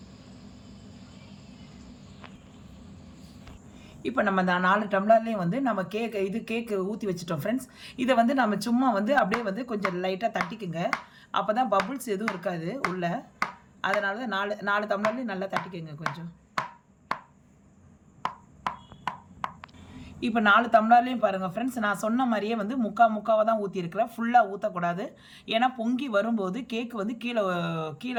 இப்போ நம்ம அந்த 4 டம்ளர்லேயும் வந்து நம்ம கேக்கு ஊற்றி வச்சுட்டோம் ஃப்ரெண்ட்ஸ். இதை வந்து நம்ம சும்மா வந்து அப்படியே வந்து கொஞ்சம் லைட்டாக தட்டிக்குங்க. அப்போ தான் பபுள்ஸ் எதுவும் இருக்காது உள்ளே. அதனால தான் 4 டம்ளர்லேயும் நல்லா தட்டிக்குங்க கொஞ்சம். இப்போ 4 டம்ளர்லேயும் பாருங்கள் ஃப்ரெண்ட்ஸ், நான் சொன்ன மாதிரியே வந்து முக்காவை தான் ஊற்றிருக்கிறேன். ஃபுல்லாக ஊற்றக்கூடாது. ஏன்னா பொங்கி வரும்போது கேக்கு வந்து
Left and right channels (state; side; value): identical; both; correlation 1.00